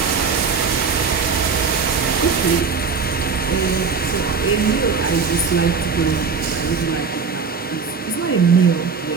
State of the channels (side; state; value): left; quieter; 5.3 dB